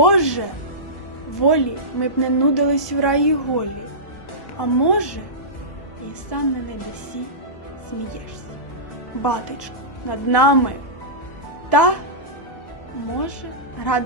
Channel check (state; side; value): late; right; 1.2 ms